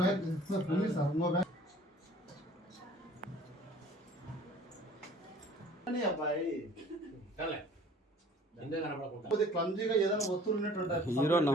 पुलिस सर वो बैग नहीं అబ్బాయి చల్లే ఇందే కనపడకుండా కొద్ది క్లమ్జీగా ఏదైనా వస్తువులు ఉన్నట్టు హీరో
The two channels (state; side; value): normal; both; correlation 0.50